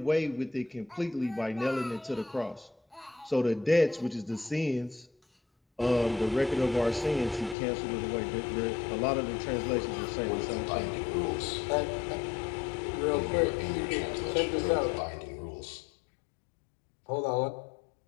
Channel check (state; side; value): drops out; right; at 7.6 s